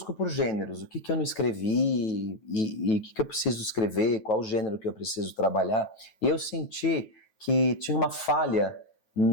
por gêneros, o que eu não escrevi e o que eu preciso escrever, qual o gênero que eu preciso trabalhar. E eu senti que tinha uma falha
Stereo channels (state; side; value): late; right; 9.2 ms